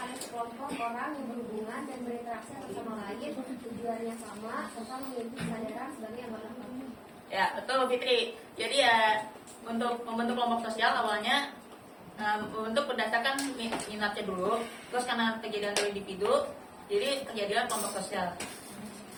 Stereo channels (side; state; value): both; identical; correlation 1.00